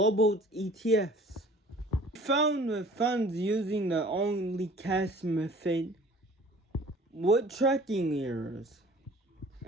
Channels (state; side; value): normal; both; correlation 0.49